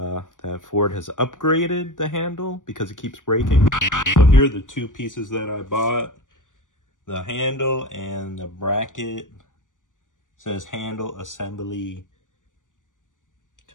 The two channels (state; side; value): late; right; 0.87 ms